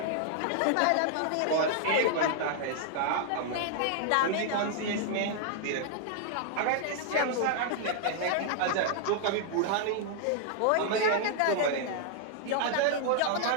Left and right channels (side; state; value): both; different; correlation -0.01